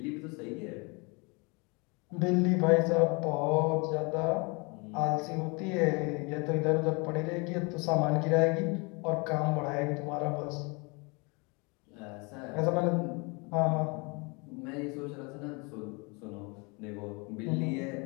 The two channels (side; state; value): right; quieter; 29.9 dB